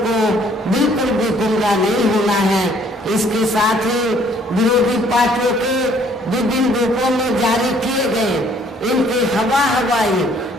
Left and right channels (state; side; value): normal; both; correlation 0.61